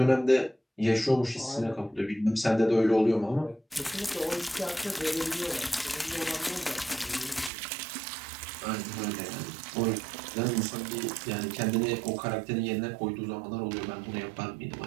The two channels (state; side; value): drops out; left; at 7.5 s